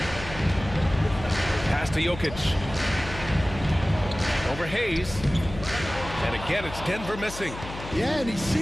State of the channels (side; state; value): left; noise; hum, 12 dB below the sound